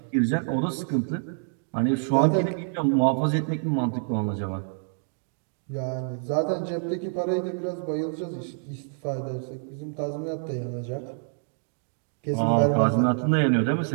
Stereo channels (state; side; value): silent; left; digital silence